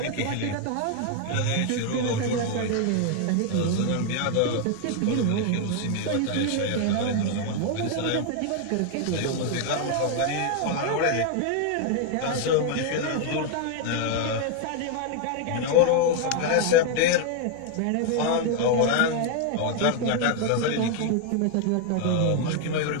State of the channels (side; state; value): both; different; correlation 0.00